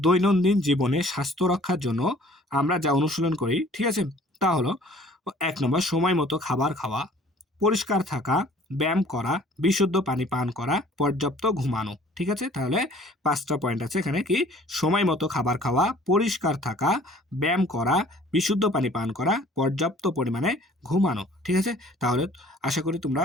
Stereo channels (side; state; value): both; normal; correlation 0.53